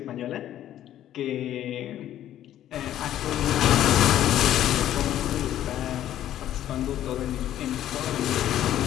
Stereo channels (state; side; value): quieter; right; 12.0 dB